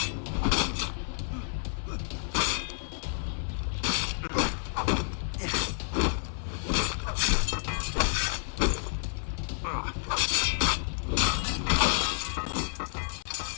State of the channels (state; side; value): silent; right; 58 dB below the other